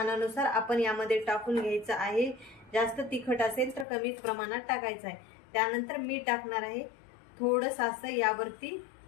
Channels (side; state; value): right; drops out; at 3.9 s